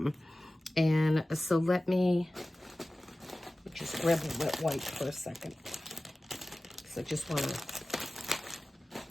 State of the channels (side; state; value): both; normal; correlation 0.97